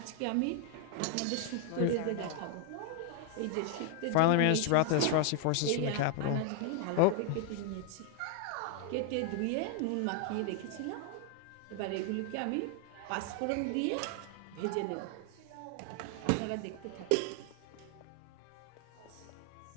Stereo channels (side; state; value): both; different; correlation 0.00